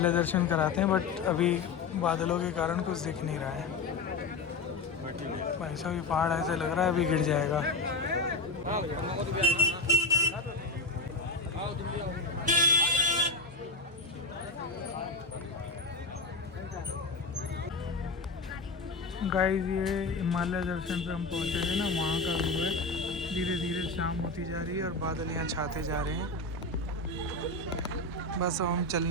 दर्शन कराते हैं, बट अभी बादलों के कारण कुछ दिख नहीं रहा है। भाई साहब ये पहाड़ ऐसे लग रहा है अभी गिर जाएगा। गाइस ये हिमालय दर्शन पे हम पहुंचे हैं ना, वहाँ का व्यू है। धीरे धीरे शाम होती जा रही है और बादल यहाँ छाते जा रहे हैं। बस अब हम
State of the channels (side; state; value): right; quieter; 3.4 dB